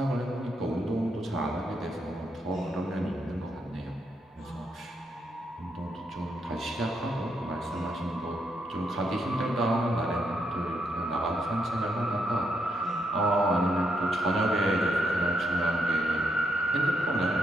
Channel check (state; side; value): normal; both; correlation 0.78